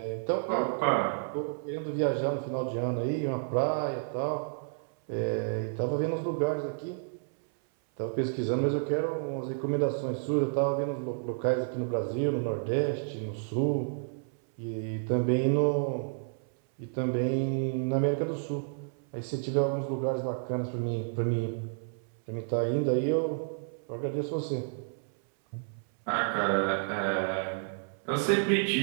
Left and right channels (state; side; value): silent; left; 57 dB below the other